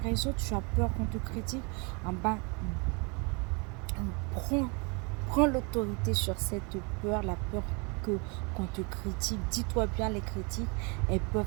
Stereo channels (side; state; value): left; quieter; 32.2 dB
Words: tu as peur qu'on te critique, en bas, prends l'autorité sur cette peur, la peur qu'on te critique. Dis-toi bien, les critiques, elles peuvent